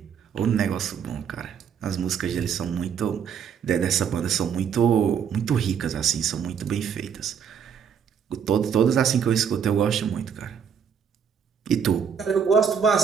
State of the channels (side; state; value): left; quieter; 7.4 dB